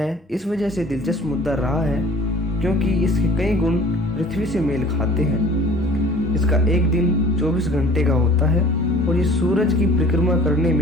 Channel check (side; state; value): both; normal; correlation 0.49